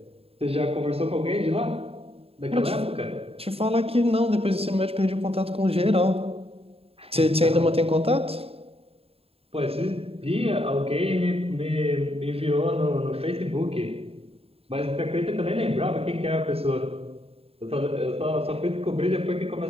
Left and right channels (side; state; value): left; late; 0.28 ms